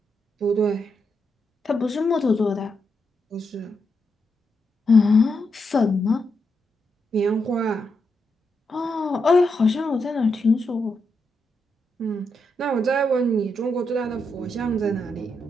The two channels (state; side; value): normal; both; correlation 0.83